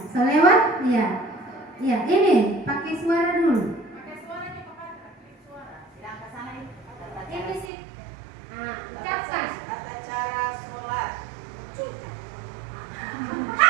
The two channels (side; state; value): left; drops out; at 7.7 s